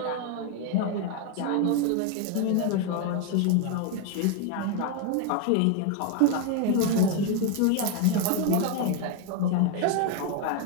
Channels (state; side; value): different; both; correlation 0.01